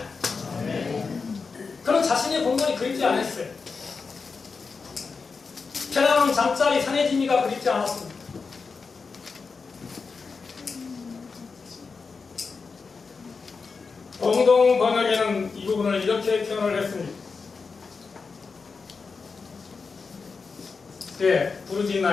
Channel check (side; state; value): right; quieter; 4.8 dB